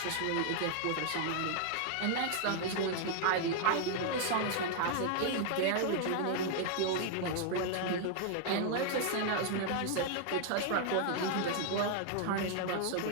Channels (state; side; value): different; both; correlation 0.00